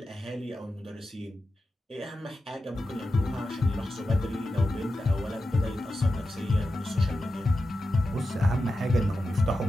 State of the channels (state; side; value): normal; both; correlation 0.91